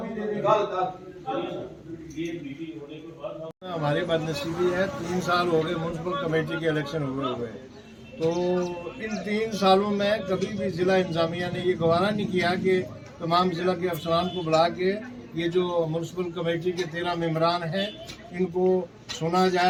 हमारी बदनसीबी है, 3 साल हो गए म्यूनसिपल कमेटी के इलेक्शन हुए। तो इन 3 सालों में कभी भी जिला इंतजामिया ने ये गवारा नहीं किया कि तमाम जिला के अफसरान को बुला के ये जो म्यूनसिपल कमेटी के 13 मेंबरान हैं इनको सुना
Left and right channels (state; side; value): identical; both; correlation 1.00